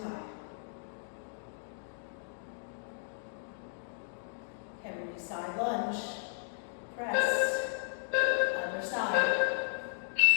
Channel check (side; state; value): right; silent; digital silence